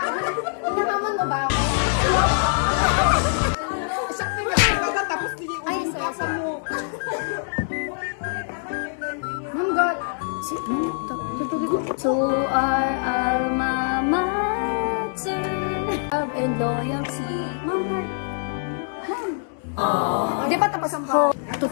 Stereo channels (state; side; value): silent; right; 63 dB below the other